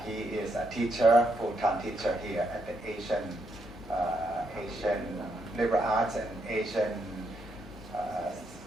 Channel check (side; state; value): both; normal; correlation 0.78